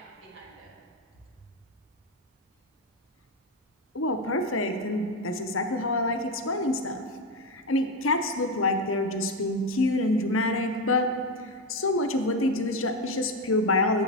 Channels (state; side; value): normal; both; correlation 0.12